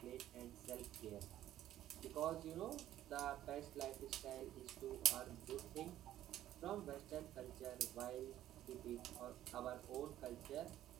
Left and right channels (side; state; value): left; quieter; 12.8 dB